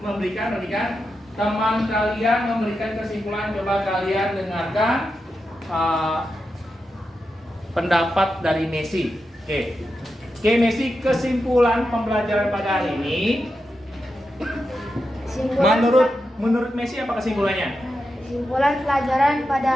memberikan. Teman kalian memberikan kesimpulan. Coba kalian dengarkan pendapat dari Messi. Oke, Messi, kesimpulan pembelajaran pada hari ini. Menurut Messi apa kesimpulannya? Kesimpulan pelajaran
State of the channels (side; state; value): both; normal; correlation 0.88